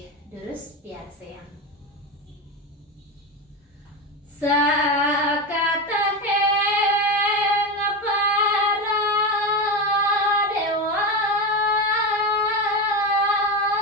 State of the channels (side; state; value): both; normal; correlation 0.17